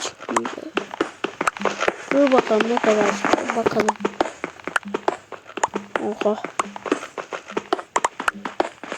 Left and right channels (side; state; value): both; identical; correlation 1.00